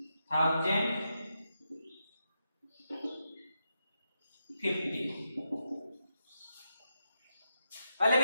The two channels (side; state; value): both; inverted; correlation -0.86